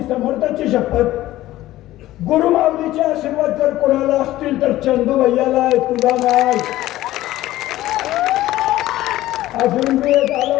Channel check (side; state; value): right; quieter; 15.5 dB